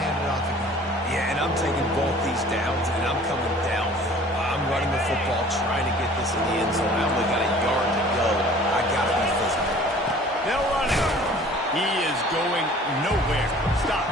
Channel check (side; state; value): both; normal; correlation 0.49